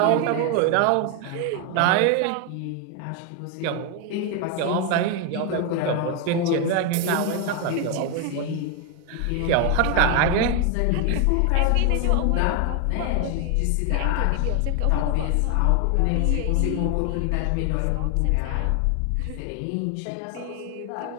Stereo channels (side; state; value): both; different; correlation 0.01